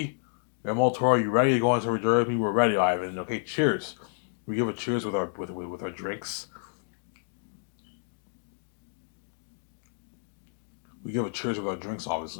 Guillermo Toro, are you ready to go on this journey with me? We're ready, Ivan. Okay, cheers. We give a cheers with our drinks. We give a cheers with our drinks,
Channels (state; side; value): silent; right; digital silence